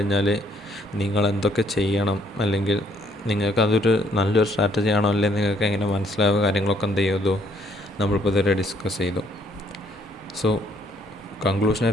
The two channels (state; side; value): normal; both; correlation 0.66